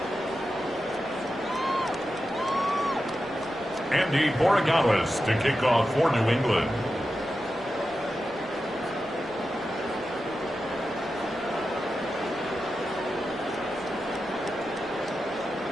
Andy Borregales to kick off for New England.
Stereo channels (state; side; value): normal; both; correlation 0.91